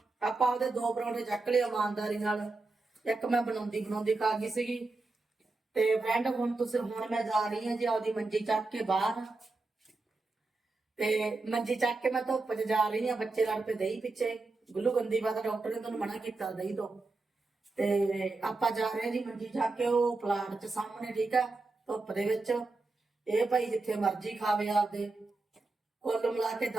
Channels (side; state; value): left; quieter; 3.5 dB